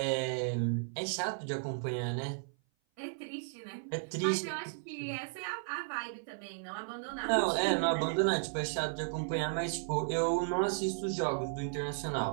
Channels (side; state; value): left; silent; 55 dB below the other